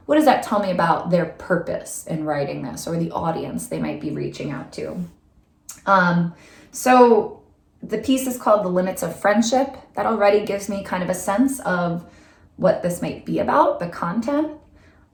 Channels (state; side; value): identical; both; correlation 1.00